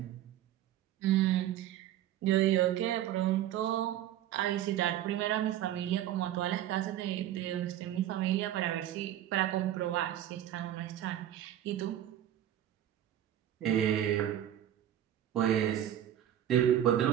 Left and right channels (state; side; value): quieter; left; 11.8 dB